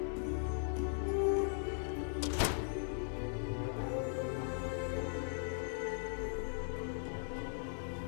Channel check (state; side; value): silent; right; 52 dB below the other